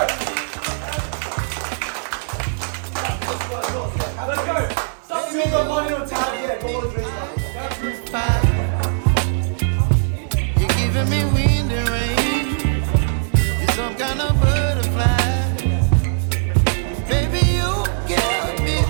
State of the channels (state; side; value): silent; left; 57 dB below the other